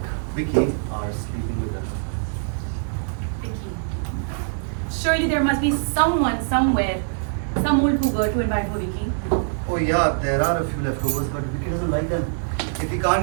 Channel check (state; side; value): silent; left; digital silence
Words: Vicky are sleeping with her. Vicky. Surely there must be someone somewhere, some old cougar to invite for Vicky. Oh yeah, there are a few leftovers, but Vicky doesn't like them. If he can't